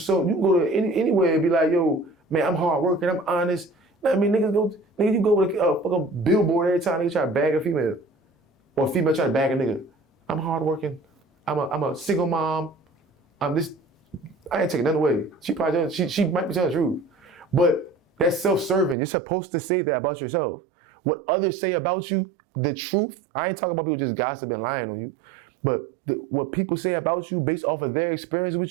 anywhere and be like, yo, man, I'm hardworking, I'm honest. You know what I mean? Niggas, you go with a fucking billboard every time niggas try to bag a female. Or a female try to bag a nigga. I'm hardworking, I'm a single mom, I'm this, I ain't taking nothing away. She probably, she might be telling the truth. But that's self-serving. You're supposed to say that about yourself. What others say about you, the truth, I ain't talking about people just gossiping and lying on you, but what people say about you based off of their experience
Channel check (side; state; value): left; drops out; at 18.9 s